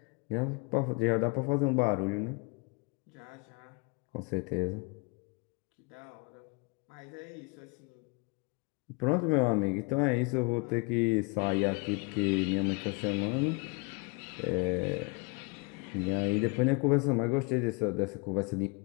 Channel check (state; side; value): quieter; right; 30.4 dB